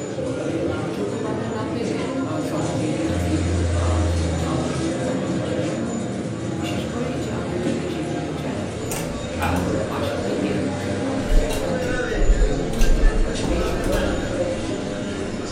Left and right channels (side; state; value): both; identical; correlation 1.00